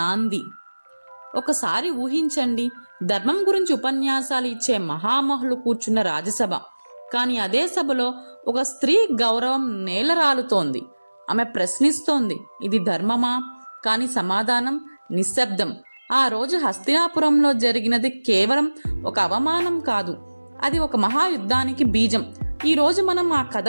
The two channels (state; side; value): inverted; both; correlation -1.00